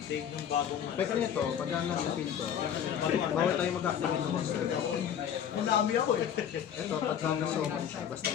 take ng bagong ano. Pwede nito, pag nasa field ko, bawal tayo mag-activate ng monster. Ang dami ako eh. Ito, pag nasa summon siya, basta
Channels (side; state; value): right; quieter; 9.0 dB